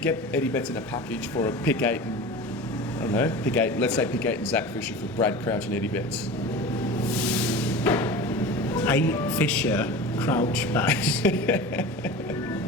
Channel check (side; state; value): both; normal; correlation 0.33